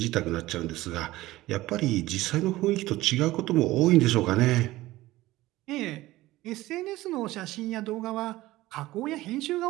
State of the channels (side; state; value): left; quieter; 17.5 dB